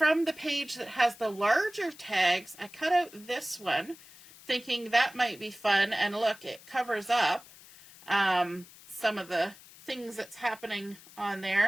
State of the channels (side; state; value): left; noise; hiss, 21 dB below the sound